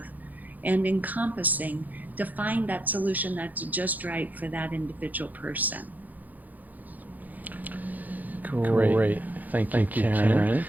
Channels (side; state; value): left; late; 0.082 ms